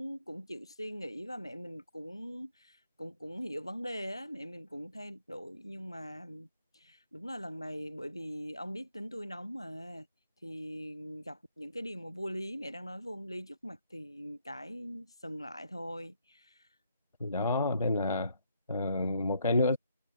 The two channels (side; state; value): both; inverted; correlation -0.73